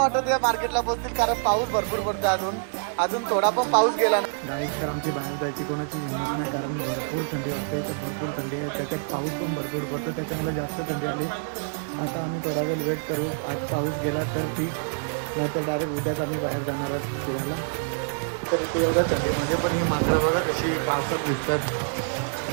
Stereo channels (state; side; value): silent; left; digital silence